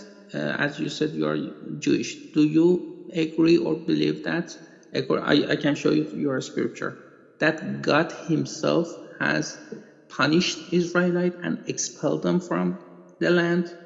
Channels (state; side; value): identical; both; correlation 1.00